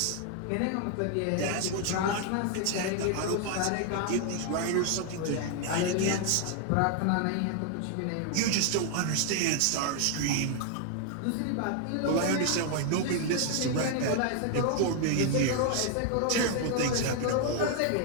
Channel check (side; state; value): both; different; correlation 0.00